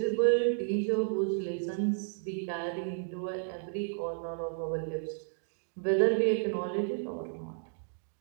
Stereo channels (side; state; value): left; silent; digital silence